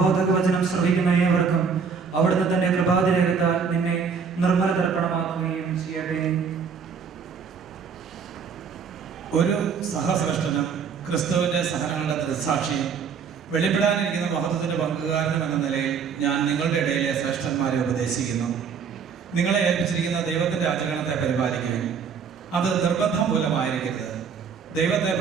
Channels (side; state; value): left; quieter; 6.1 dB